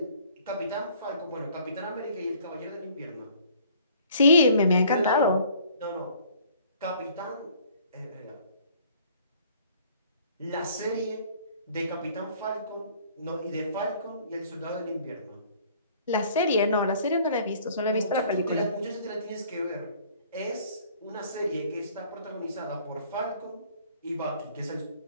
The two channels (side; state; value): both; inverted; correlation -0.56